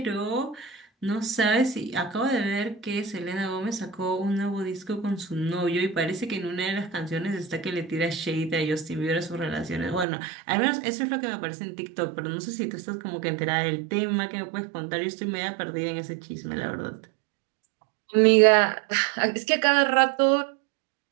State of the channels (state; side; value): drops out; left; at 10.1 s